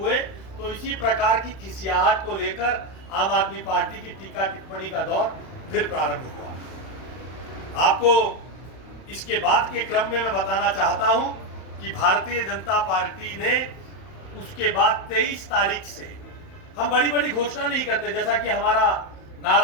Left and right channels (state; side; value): late; right; 31 ms